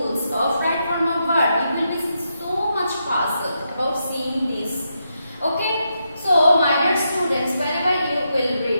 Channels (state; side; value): inverted; both; correlation -0.83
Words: of right form of verb. You will be so much puzzled about seeing this. Okay, so my dear students, whenever you will